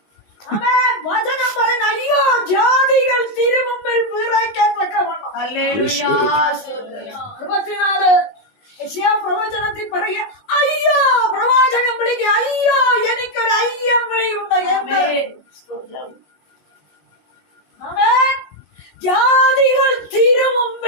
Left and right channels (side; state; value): right; late; 19 ms